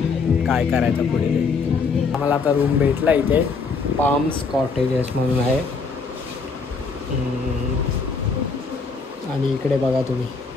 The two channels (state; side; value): quieter; right; 4.7 dB